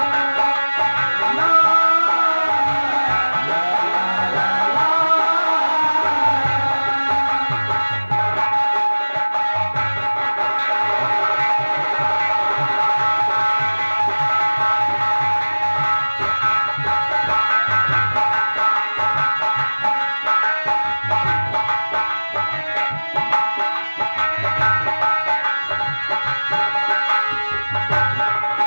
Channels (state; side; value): inverted; both; correlation -1.00